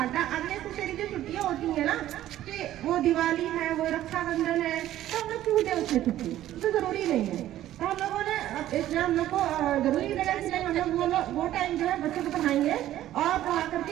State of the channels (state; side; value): quieter; left; 13.3 dB